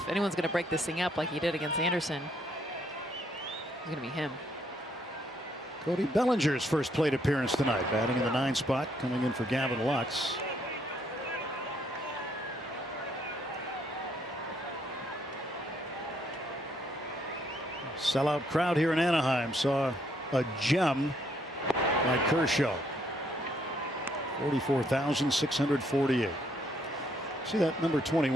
anyone's going to break this thing up like he did against Anderson, it's going to be him. Cody Bellinger's first plate appearance tonight, batting in the 9 spot, coming in for Gavin Lux. Sellout crowd here in Anaheim saw a gem by Kershaw. 44,648. See that number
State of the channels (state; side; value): normal; both; correlation 0.70